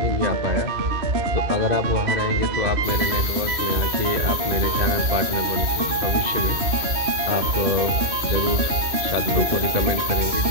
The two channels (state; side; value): late; left; 2.5 ms